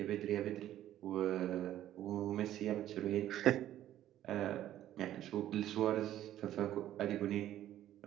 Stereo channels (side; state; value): left; quieter; 12.5 dB